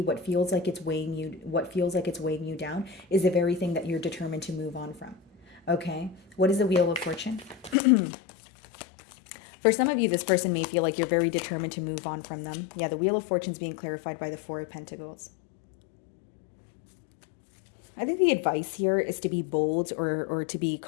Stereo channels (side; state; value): right; drops out; at 7.8 s